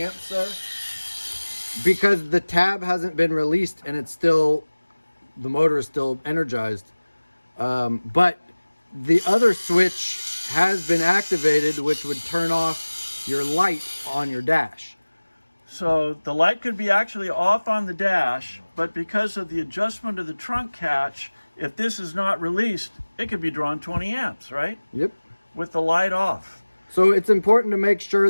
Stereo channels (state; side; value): inverted; both; correlation -1.00